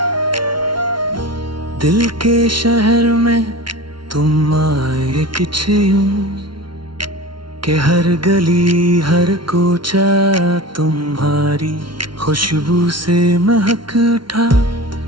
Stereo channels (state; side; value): late; left; 0.73 ms